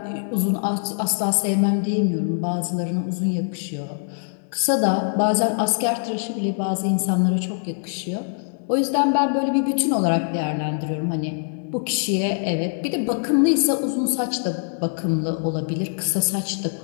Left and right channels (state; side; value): silent; right; digital silence